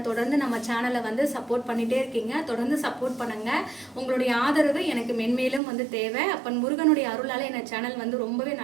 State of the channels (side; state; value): left; drops out; at 5.6 s